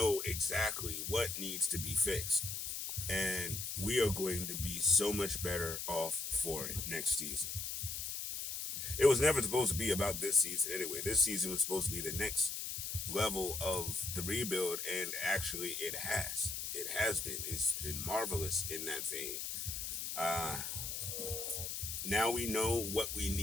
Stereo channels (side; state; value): left; noise; hiss, 4 dB below the sound